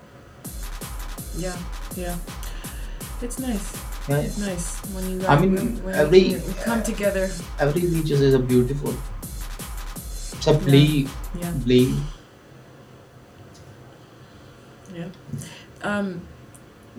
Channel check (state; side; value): identical; both; correlation 1.00